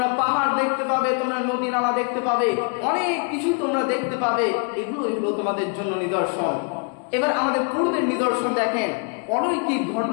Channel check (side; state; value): right; quieter; 37.5 dB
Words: পাহাড় দেখতে পাবে, তোমরা নদী নালা দেখতে পাবে, অনেক কিছু তোমরা দেখতে পাবে। এগুলো তোমাদের জন্য নিদর্শন। এবার আমাদের পূর্বের নিদর্শন দেখেন, অলৌকিক